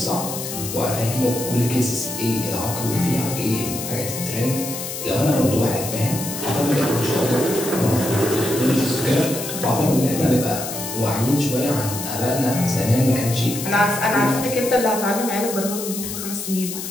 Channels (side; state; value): left; noise; hiss, 7 dB below the sound